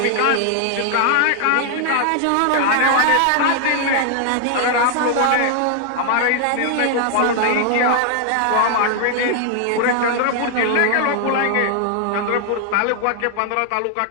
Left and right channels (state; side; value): different; both; correlation 0.00